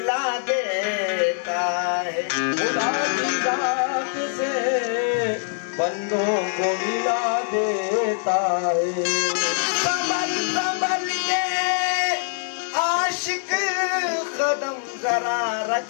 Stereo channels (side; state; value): right; silent; digital silence